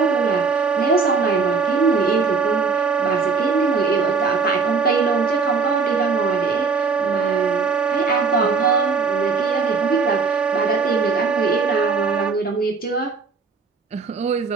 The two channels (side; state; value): left; quieter; 4.9 dB